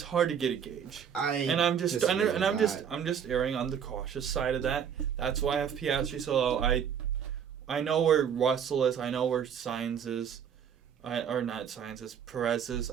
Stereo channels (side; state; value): left; quieter; 8.1 dB